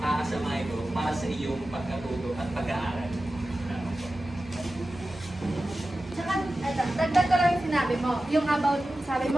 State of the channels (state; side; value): normal; both; correlation 0.94